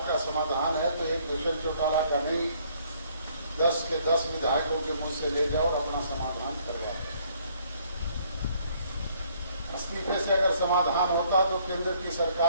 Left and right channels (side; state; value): both; inverted; correlation -0.64